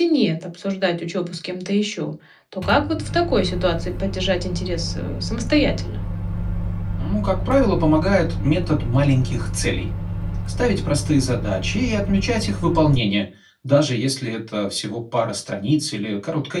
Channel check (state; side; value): identical; both; correlation 1.00